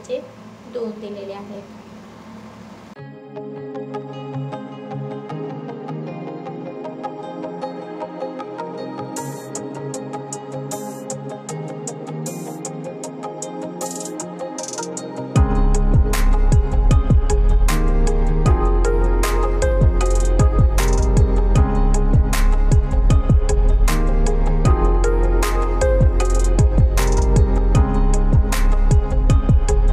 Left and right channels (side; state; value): both; identical; correlation 1.00